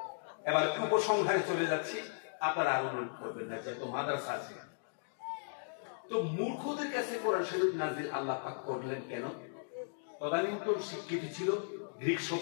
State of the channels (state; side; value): silent; right; digital silence